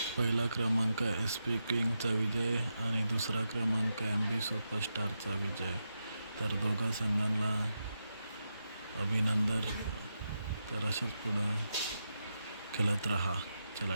पहिला क्रमांक एस पी किंगचा विजय आणि दुसरा क्रमांक MB सुपरस्टारचा विजय. तर दोघा संघांना अभिनंदन. तर अशाच पुढं खेळत राहा. चला,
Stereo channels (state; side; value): inverted; both; correlation -0.87